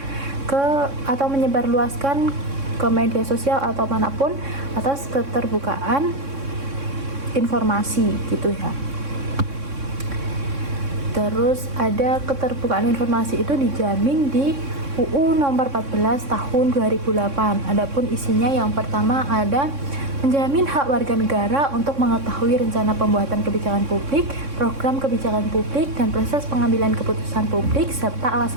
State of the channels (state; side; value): late; left; 3.6 ms